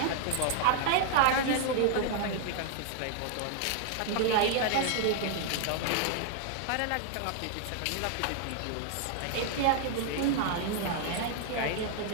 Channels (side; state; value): both; different; correlation 0.00